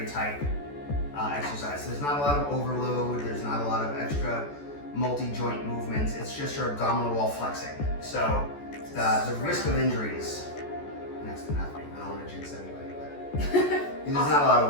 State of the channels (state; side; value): late; right; 14 ms